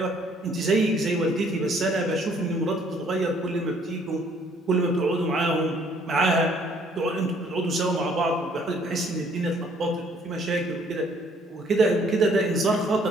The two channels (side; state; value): both; normal; correlation 0.62